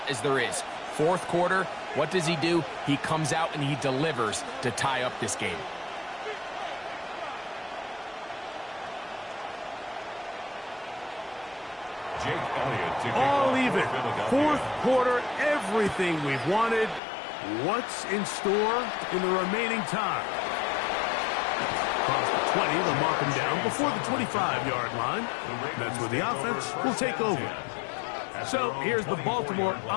as there is. Fourth quarter, what does he do? He comes out and he delivers to tie up this game. All even. Fourth quarter, everything we've wanted. What's in store in the remaining time? Across the 20, they'll mark him down before the 25-yard line. That's where the offense will take over. So here's the Baltimore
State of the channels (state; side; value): drops out; right; at 17.0 s